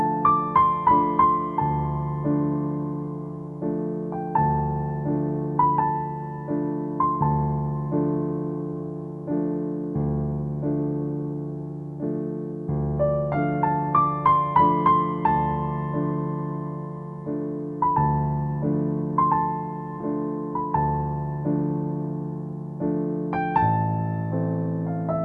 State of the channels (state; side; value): identical; both; correlation 1.00